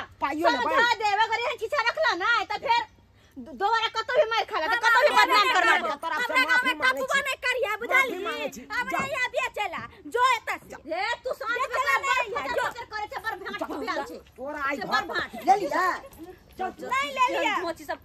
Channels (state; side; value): identical; both; correlation 1.00